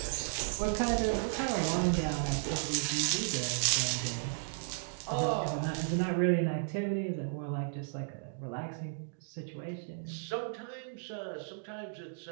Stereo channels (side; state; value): left; silent; digital silence